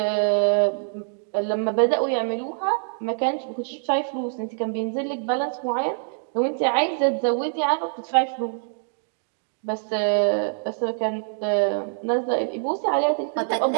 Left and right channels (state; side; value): silent; left; digital silence